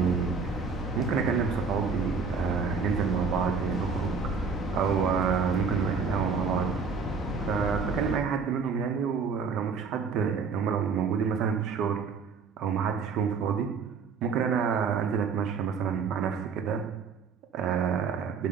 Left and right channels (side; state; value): left; quieter; 5.3 dB